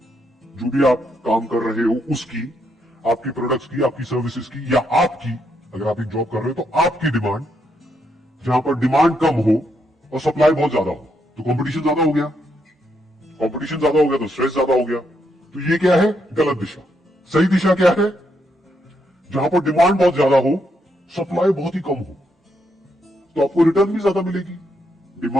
जो भी आप काम कर रहे हो उसकी, आपकी प्रोडक्ट्स की, आपकी सर्विसेज की, या आपकी, अगर आप एक जॉब कर रहे हो तो आपकी डिमांड, जहां पर डिमांड कम हो और सप्लाई बहुत ज्यादा हो। तो कंपटीशन ज्यादा हो गया, कंपटीशन ज्यादा हो गया तो स्ट्रेस ज्यादा हो गया। तो ये क्या है? गलत दिशा। सही दिशा क्या है? जहां पर डिमांड बहुत ज्यादा हो, सप्लाई बहुत ही कम हो, तो आपको रिटर्न भी ज्यादा मिलेगी।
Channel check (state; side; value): normal; both; correlation 0.78